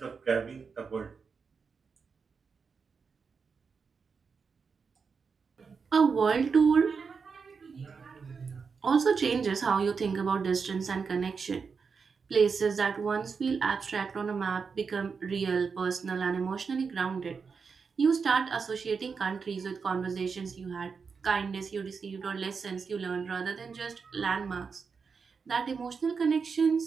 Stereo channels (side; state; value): left; quieter; 5.4 dB